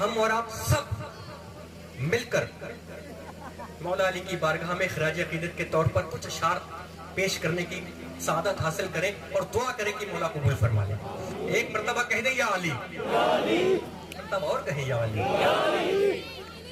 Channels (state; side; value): identical; both; correlation 1.00